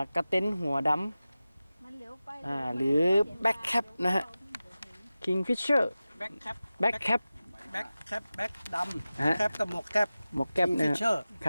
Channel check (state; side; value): inverted; both; correlation -0.96